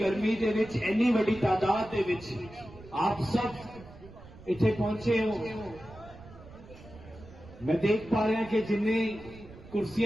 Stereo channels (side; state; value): right; noise; rumble, 19 dB below the sound